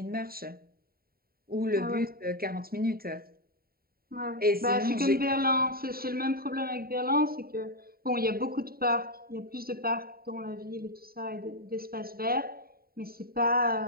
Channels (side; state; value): left; late; 0.43 ms